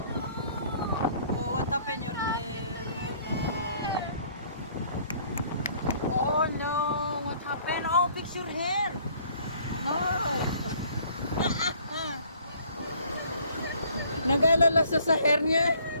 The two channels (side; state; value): both; inverted; correlation -0.58